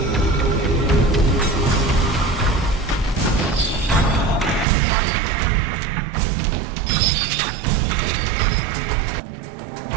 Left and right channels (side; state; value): left; drops out; at 4.7 s